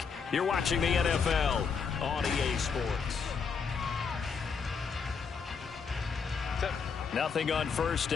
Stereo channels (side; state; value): right; quieter; 5.8 dB